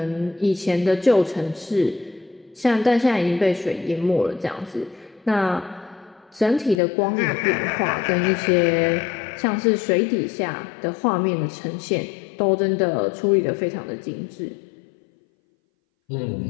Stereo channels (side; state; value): right; drops out; at 6.8 s